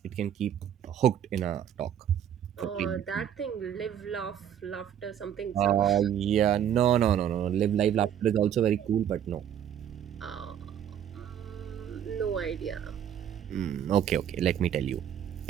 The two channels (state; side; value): quieter; left; 9.6 dB